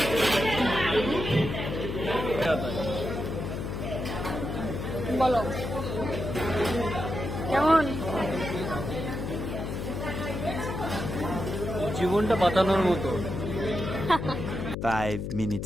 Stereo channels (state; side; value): noise; left; hum, 4 dB below the sound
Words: বলো, কেমন? জীবনটা বাঁচানোর মতো। 5